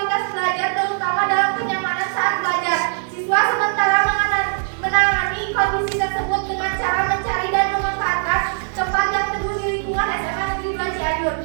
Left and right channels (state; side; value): silent; left; 65 dB below the other